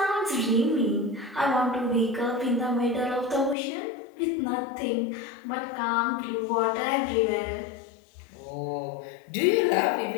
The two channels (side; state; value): right; drops out; at 3.6 s